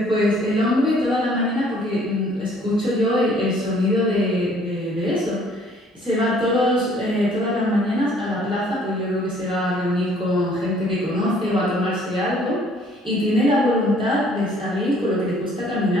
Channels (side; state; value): both; normal; correlation 0.59